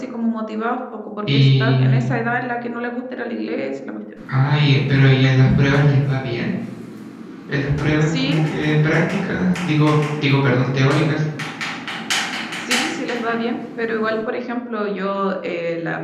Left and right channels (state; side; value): identical; both; correlation 1.00